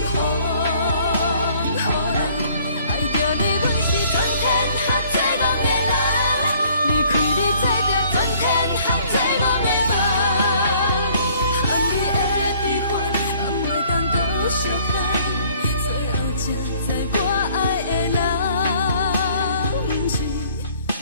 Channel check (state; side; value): inverted; both; correlation -0.58